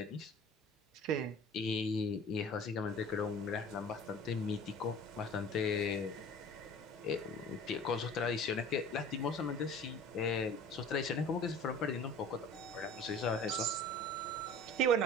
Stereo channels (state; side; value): normal; both; correlation 0.44